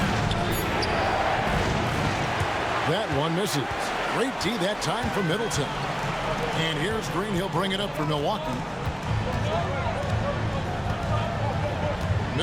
That one misses. Great D that time for Middleton. And here's Green. He'll bring it up for Milwaukee.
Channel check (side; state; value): both; identical; correlation 1.00